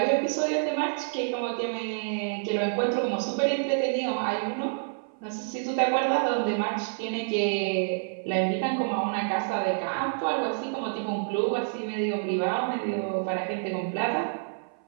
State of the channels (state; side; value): silent; left; 56 dB below the other